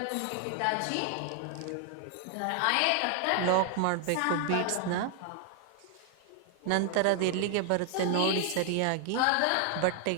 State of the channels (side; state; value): both; different; correlation 0.00